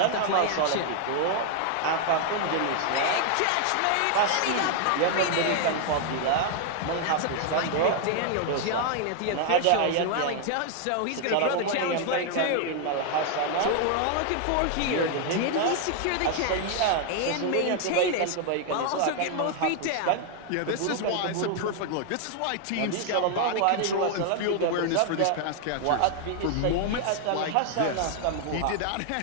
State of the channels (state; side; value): different; both; correlation 0.00